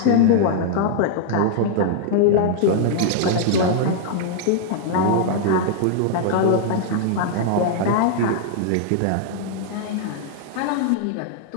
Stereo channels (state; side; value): different; both; correlation -0.01